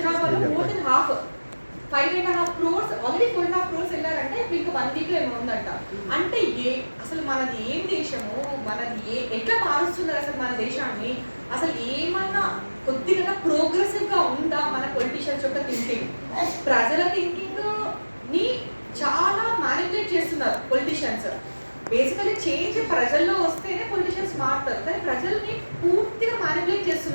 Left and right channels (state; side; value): inverted; both; correlation -1.00